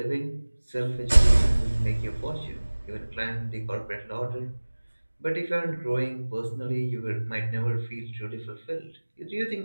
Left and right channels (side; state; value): both; inverted; correlation -1.00